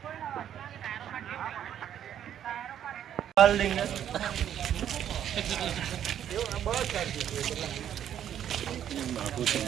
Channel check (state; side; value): quieter; left; 10.1 dB